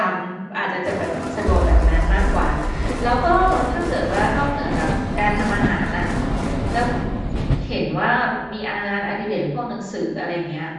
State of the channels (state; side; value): identical; both; correlation 1.00